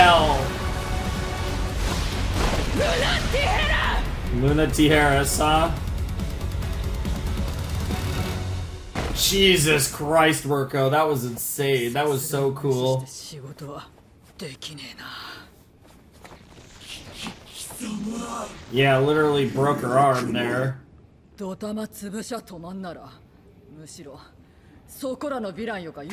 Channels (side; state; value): both; identical; correlation 1.00